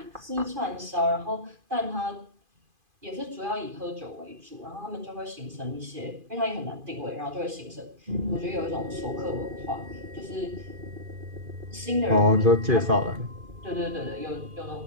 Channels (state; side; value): late; left; 2.5 ms